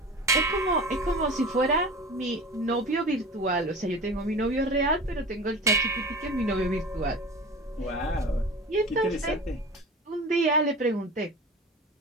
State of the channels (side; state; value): both; normal; correlation 0.34